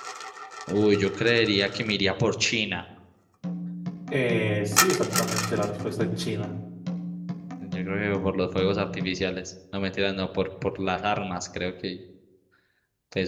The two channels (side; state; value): both; identical; correlation 1.00